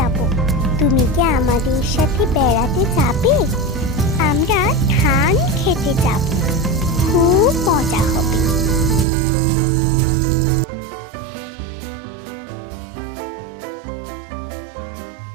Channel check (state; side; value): drops out; left; at 9.1 s